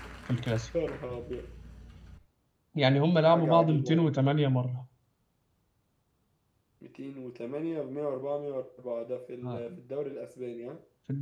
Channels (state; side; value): identical; both; correlation 1.00